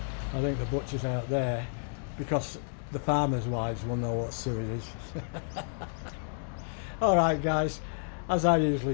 I think the butchers out there, because the farmers' wives will know what suet is. Alright guys, as I usually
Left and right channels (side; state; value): right; silent; digital silence